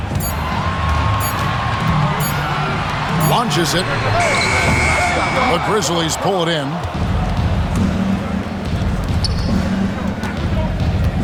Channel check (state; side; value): identical; both; correlation 1.00